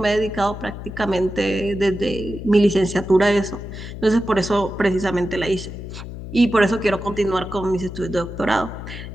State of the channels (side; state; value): left; noise; hum, 10 dB below the sound